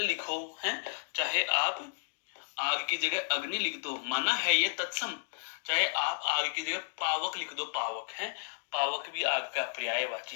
लिखो, हैं? चाहे आप आग की जगह अग्नि लिख दो, माना है ये तत्सम, चाहे आप आग की जगह पावक लिख दो, पावक, है? पावक भी आग का पर्यायवाची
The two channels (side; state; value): right; silent; digital silence